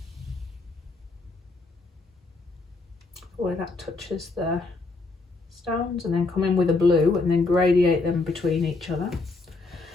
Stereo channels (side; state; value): right; quieter; 3.6 dB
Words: where that touches the stones, and then come in with a blue and then gradiate them between each other.